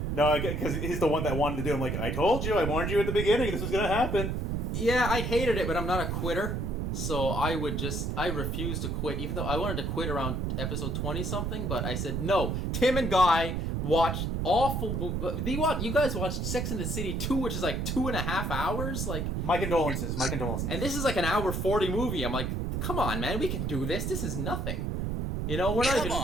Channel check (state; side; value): noise; right; rumble, 1 dB below the sound